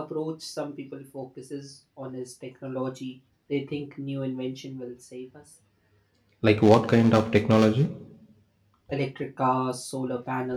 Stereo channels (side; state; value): both; identical; correlation 1.00